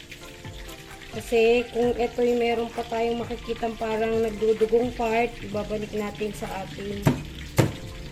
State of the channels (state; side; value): identical; both; correlation 1.00